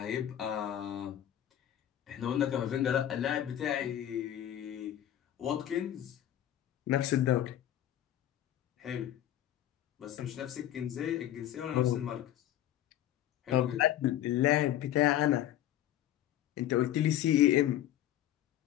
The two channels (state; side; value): quieter; right; 12.1 dB